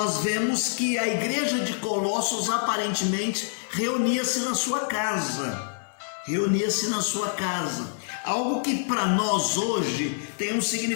vemos que a igreja de Colossos aparentemente reunia-se na sua casa. Algo que para nós hoje tem um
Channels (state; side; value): silent; right; 61 dB below the other